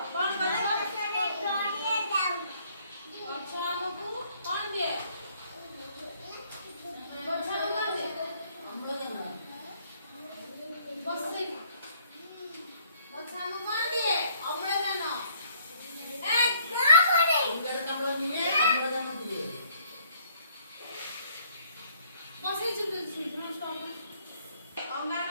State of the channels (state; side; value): inverted; both; correlation -0.65